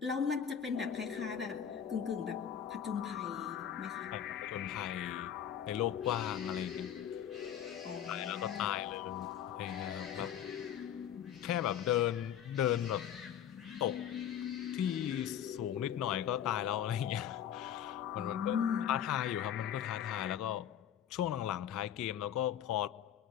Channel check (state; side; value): quieter; right; 9.6 dB